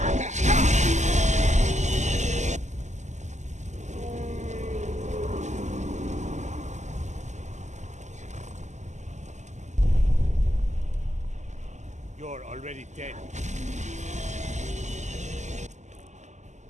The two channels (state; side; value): late; left; 0.34 ms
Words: You're already dead.